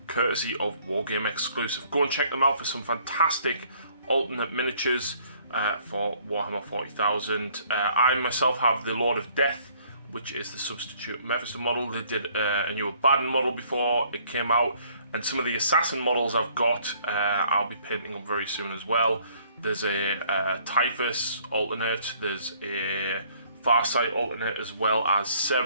courtesy of Wargame exclusive. Go and check them out for some fantastic alternate miniatures for Warhammer 40,000. I myself have the Lord of Death, which is the substitute Mephisto model. They did a new Abaddon model before it came out, and some of the Assassin models I've got I'll be painting up very soon as well. There's a Typhus alternate, there's a Farsight alternate, as well as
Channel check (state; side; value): inverted; both; correlation -0.61